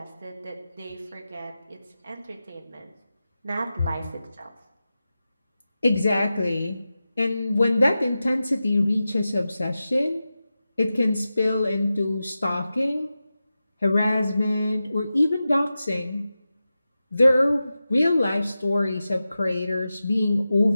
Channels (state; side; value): inverted; both; correlation -0.93